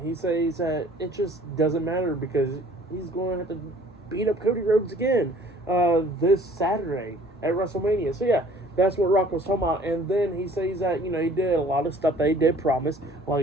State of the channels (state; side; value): normal; both; correlation 0.53